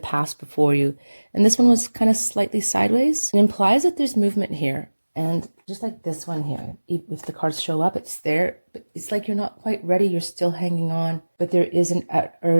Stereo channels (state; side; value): inverted; both; correlation -1.00